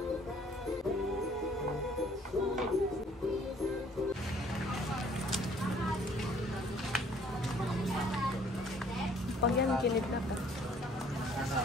yan, kilid na pa.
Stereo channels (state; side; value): normal; both; correlation 0.59